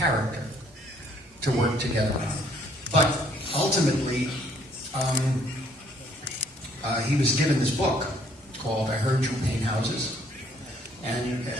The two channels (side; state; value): both; normal; correlation 0.63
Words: to work together on. But ultimately, he was given this book called I Heard You Paint Houses. And